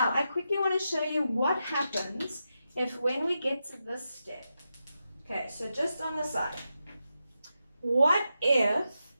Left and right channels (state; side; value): inverted; both; correlation -0.88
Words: I quickly want to show you what happens if when we get to this step. Okay, so just on the side. What if